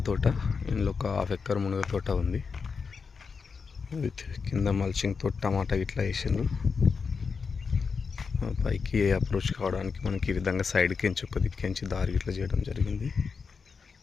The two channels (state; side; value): quieter; right; 5.3 dB